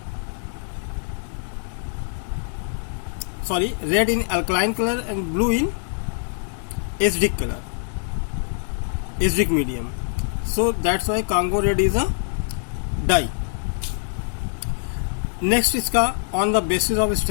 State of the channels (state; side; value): silent; right; digital silence